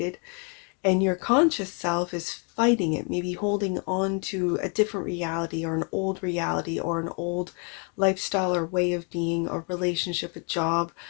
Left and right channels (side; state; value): right; quieter; 37.6 dB